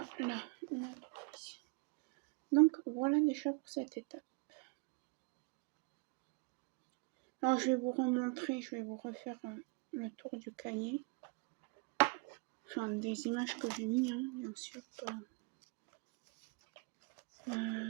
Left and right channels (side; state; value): left; quieter; 31.0 dB